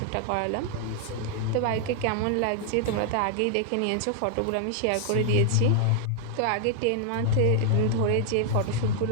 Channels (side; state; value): both; different; correlation 0.00